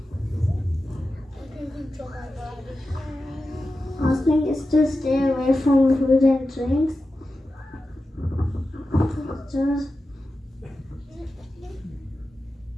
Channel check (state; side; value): normal; both; correlation 0.92